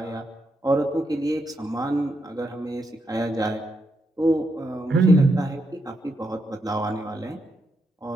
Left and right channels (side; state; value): both; normal; correlation 0.81